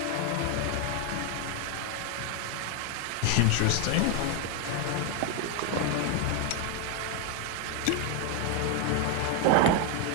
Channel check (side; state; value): both; different; correlation 0.01